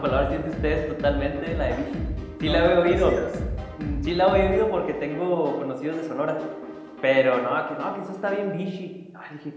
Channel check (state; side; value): identical; both; correlation 1.00